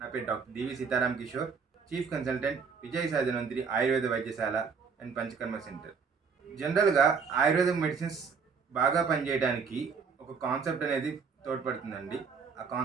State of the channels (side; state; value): left; quieter; 5.7 dB